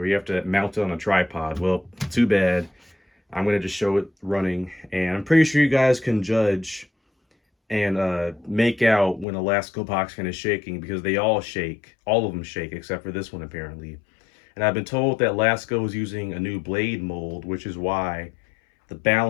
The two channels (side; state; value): right; drops out; at 9.2 s